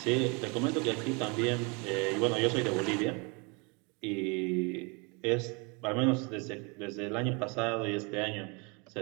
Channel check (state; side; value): quieter; left; 31.1 dB